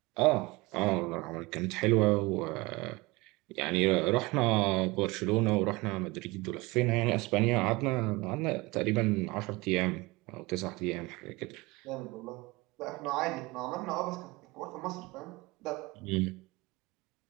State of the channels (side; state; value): left; quieter; 23.1 dB